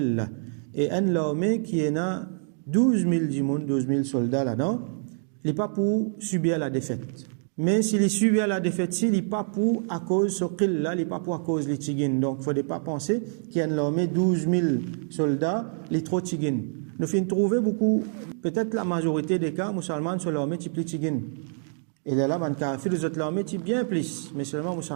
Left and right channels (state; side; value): silent; left; 61 dB below the other